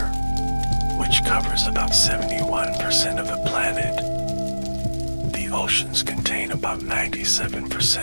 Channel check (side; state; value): both; inverted; correlation -1.00